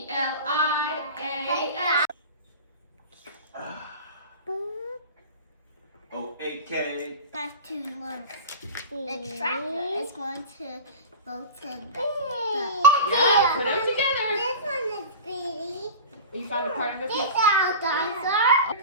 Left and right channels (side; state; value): both; inverted; correlation -0.32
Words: O-A-K. Have to look. The tractor is going to go to the. Yeah, put them together. This one is Speedy. You found a part of it? Get out, dinosaur. You're